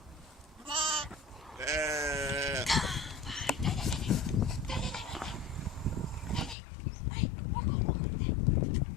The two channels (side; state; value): right; drops out; at 6.6 s